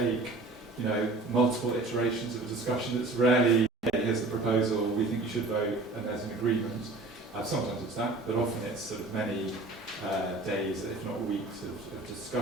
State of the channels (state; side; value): quieter; left; 3.2 dB